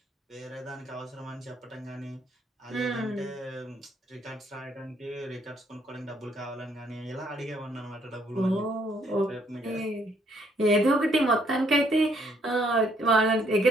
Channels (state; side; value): normal; both; correlation 0.68